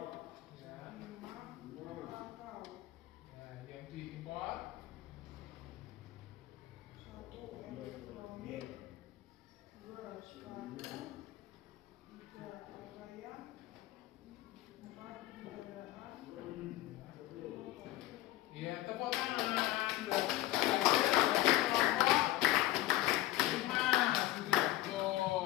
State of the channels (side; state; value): right; quieter; 16.2 dB